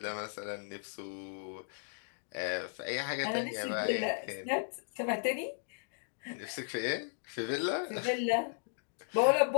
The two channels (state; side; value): silent; right; digital silence